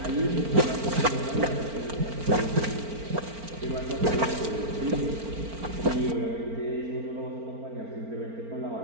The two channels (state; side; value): late; left; 4.4 ms